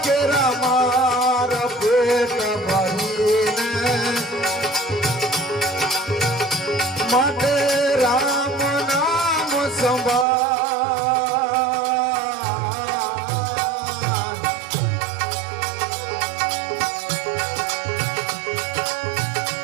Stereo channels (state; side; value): drops out; left; at 10.2 s